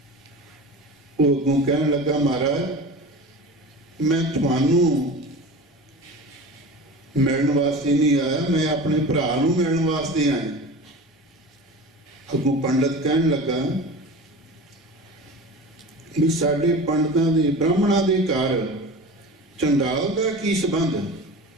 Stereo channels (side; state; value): both; normal; correlation 0.33